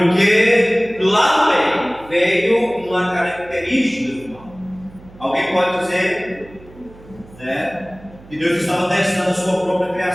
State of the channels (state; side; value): noise; right; hum, 22 dB below the sound